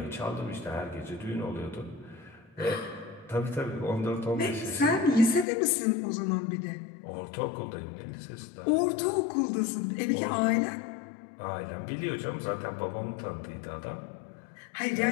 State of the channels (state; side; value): drops out; right; at 5.5 s